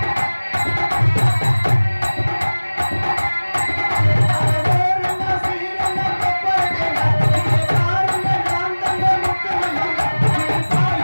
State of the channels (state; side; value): inverted; both; correlation -1.00